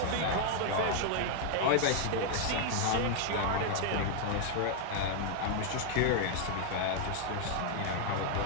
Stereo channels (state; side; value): different; both; correlation 0.00